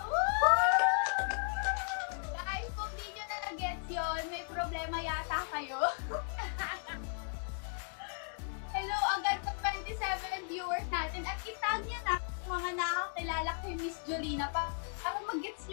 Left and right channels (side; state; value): right; silent; 54 dB below the other